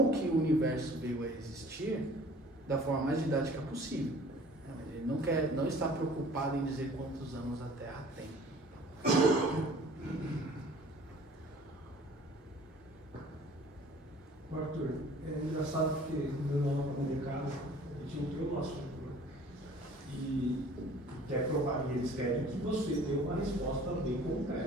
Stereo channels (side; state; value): both; normal; correlation 0.50